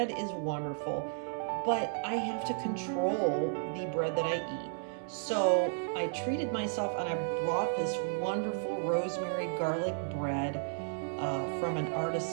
is wonderful. But I have to control the bread that I eat. So I treated myself and I brought this wonderful rosemary garlic bread from an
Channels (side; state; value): left; silent; 56 dB below the other